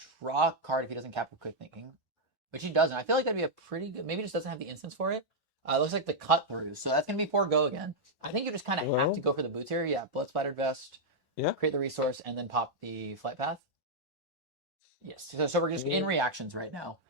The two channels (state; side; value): normal; both; correlation -0.04